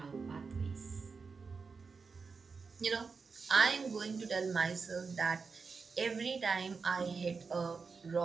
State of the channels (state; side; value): quieter; left; 4.9 dB